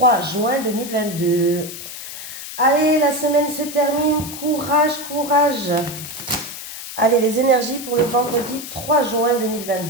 juin 2022. Allez, la semaine se termine, courage, courage. Allez, les énergies pour le vendredi 3 juin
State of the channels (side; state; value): left; noise; hiss, 10 dB below the sound